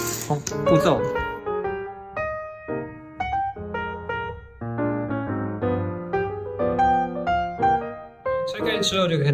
步骤。拆开之后就可以看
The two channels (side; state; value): both; identical; correlation 1.00